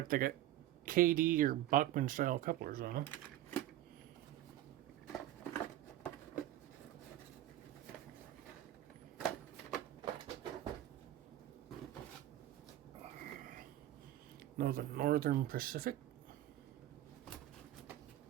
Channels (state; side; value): quieter; left; 13.8 dB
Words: they got KD or Bachmann style couplers on them. Northern Pacific.